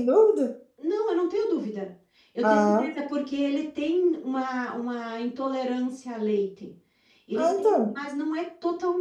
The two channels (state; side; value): identical; both; correlation 1.00